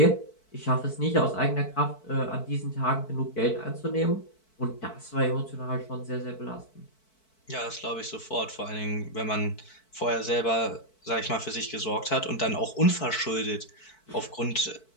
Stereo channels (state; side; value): late; right; 4.5 ms